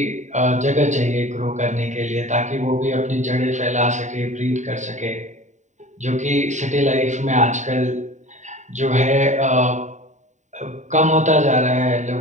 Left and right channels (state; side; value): late; left; 0.34 ms